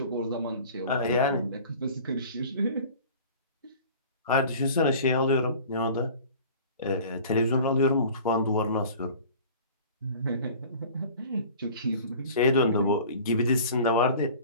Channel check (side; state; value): both; inverted; correlation -0.43